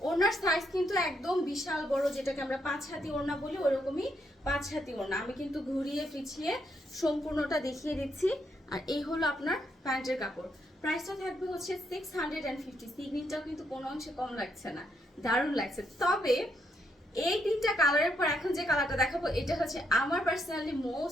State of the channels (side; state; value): both; normal; correlation 0.77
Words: ওড়নার সাইজ কিন্তু একদম বিশাল বড়, যেটাকে আমরা 5 হাতি ওড়না বলি, ওরকমই 5 হাতি ওড়না। আমি কিন্তু ঘুরিয়ে পিছিয়ে সম্পূর্ণটা দেখিয়ে দিচ্ছি। আর এই হলো আপনার প্যান্টের কাপড়। প্রাইসটা থাকবে হচ্ছে 650। সিগনিটাও কিন্তু কোনো অংশে কম লাগছে না, দারুণ লাগছে। তবে এই 3টা কালারের পর এখন যে কালারটা দেখাবো এটা হচ্ছে আমার পার্সোনালি